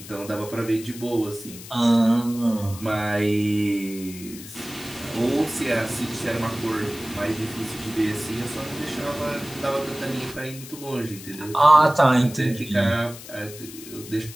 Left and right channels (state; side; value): noise; left; hiss, 15 dB below the sound